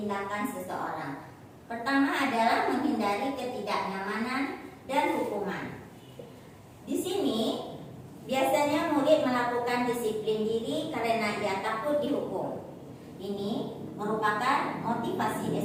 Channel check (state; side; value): identical; both; correlation 1.00